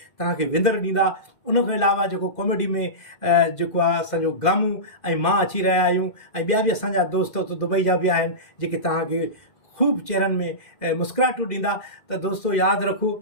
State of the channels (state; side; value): late; right; 2.0 ms